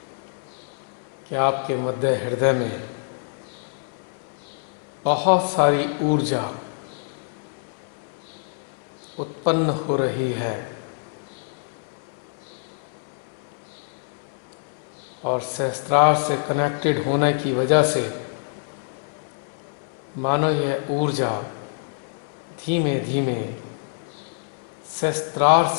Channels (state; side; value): silent; right; 61 dB below the other